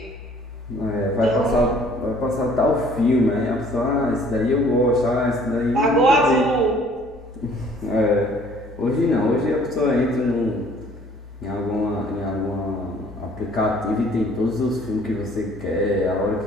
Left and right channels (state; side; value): normal; both; correlation 0.56